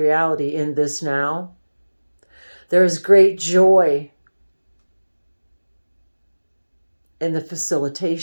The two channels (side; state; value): both; inverted; correlation -1.00